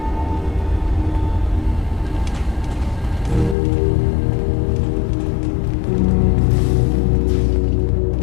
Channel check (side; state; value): right; drops out; at 3.6 s